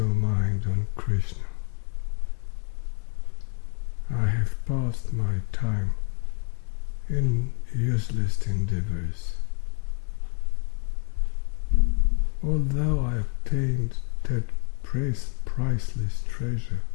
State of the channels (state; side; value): quieter; right; 35.9 dB